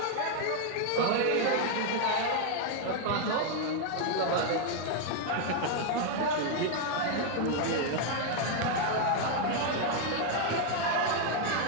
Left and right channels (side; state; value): both; different; correlation 0.00